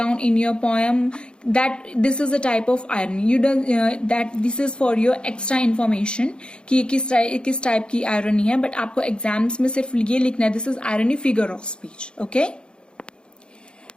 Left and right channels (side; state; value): right; late; 0.052 ms